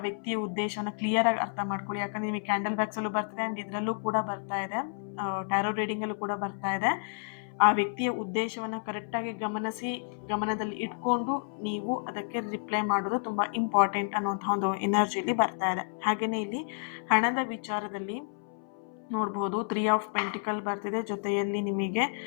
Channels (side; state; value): right; silent; 58 dB below the other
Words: ವ್ಯಕ್ತಿಯ ಉದ್ದೇಶವನ್ನು ಕ್ಲಿಯರ್ ಆಗಿ ಅರ್ಥ ಮಾಡ್ಕೊಳ್ಳಿ. ಯಾಕಂದ್ರೆ ನಿಮಗೆ ಕ್ಯಾಂಡಲ್ ಬ್ಯಾಗ್ಸಲ್ಲೂ ಬರ್ತಿದೆ ಆ್ಯಂಡ್ ಇದರಲ್ಲೂ ಕೂಡ ಬರ್ತಾ ಇದೆ, ಟ್ಯಾರೋ ರೀಡಿಂಗಲ್ಲೂ ಕೂಡ ಬರ್ತಾ ಇದೆ. ಆ ವ್ಯಕ್ತಿಯ ಉದ್ದೇಶವನ್ನು ಕರೆಕ್ಟಾಗಿ ಗಮನದಲ್ಲಿ ಇಟ್ಕೊಂಡು ನೀವು ಅದಕ್ಕೆ ರಿಪ್ಲೈ ಮಾಡೋದು ತುಂಬ ಇಂಪಾರ್ಟೆಂಟ್ ಅನ್ನುವಂಥ ಒಂದು ಎನರ್ಜಿಲಿ ಬರ್ತಾ ಇದೆ. ಹಾಗೆಯೇ ಇಲ್ಲಿ ಹಣದ ವಿಚಾರದಲ್ಲಿ ನೋಡ್ಬೋದು 3 ಆಫ್ ಪೆಂಟಿಕಲ್ ಬರ್ತಿದೆ, ಜೊತೆಯಲ್ಲಿ ನಿಮಗೆ